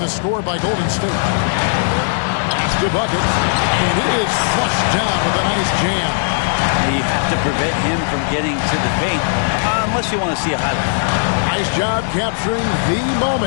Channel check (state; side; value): silent; right; digital silence